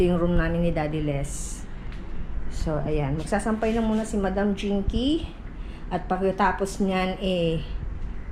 yung room namin ni Daddy Les. So ayan, magsasampay na muna si Madam Jinky. At pagkatapos niyan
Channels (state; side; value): identical; both; correlation 1.00